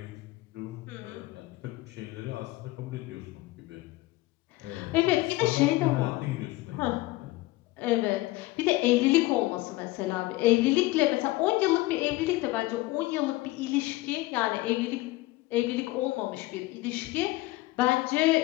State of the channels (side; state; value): right; quieter; 19.3 dB